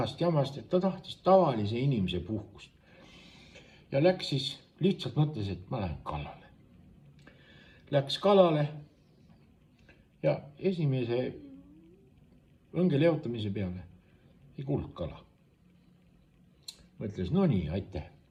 jamast, et ta tahtis tavalise inimese puhkust. Ja läks siis, lihtsalt mõtles, et ma lähen kalale. Läks kalale ja esimese õnge leotamise peale ei kuulnud kala. Mõtles, no nii, aitäh.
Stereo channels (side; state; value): both; identical; correlation 1.00